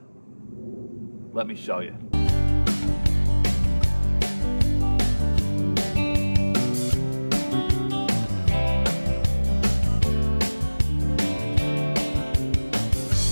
Let me show you.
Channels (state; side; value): inverted; both; correlation -1.00